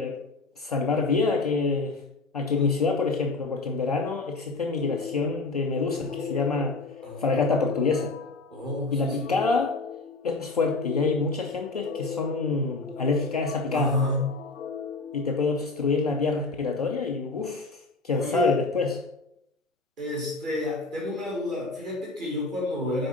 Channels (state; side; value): quieter; right; 3.5 dB